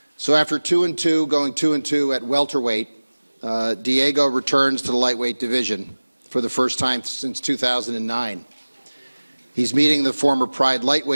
So after 2-2, going 2-2 at welterweight, Diego returns to the lightweight division for the first time since 2009. He's meeting the former Pride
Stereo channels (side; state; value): both; inverted; correlation -1.00